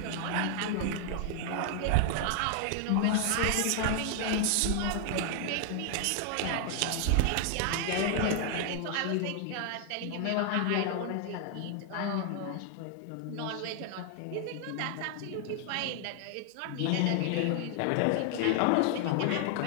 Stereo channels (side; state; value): both; different; correlation 0.00